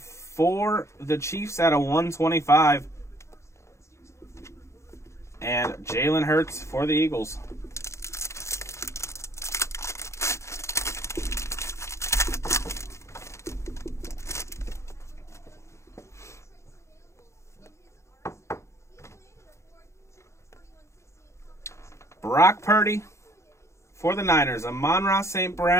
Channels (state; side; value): late; right; 0.14 ms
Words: for the Chiefs at a 125. And Jalen Hurts for the Eagles. Brock Purdy for the Niners. Amon-Ra St.